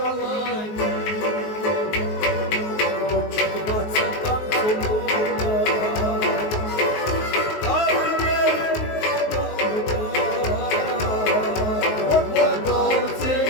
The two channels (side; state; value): right; late; 19 ms